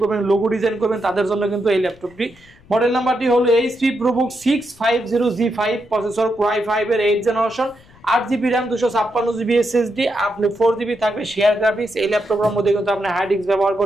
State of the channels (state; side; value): noise; left; rumble, 26 dB below the sound